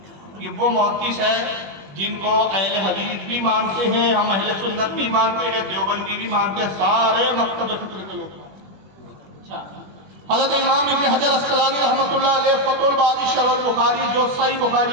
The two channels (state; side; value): late; left; 21 ms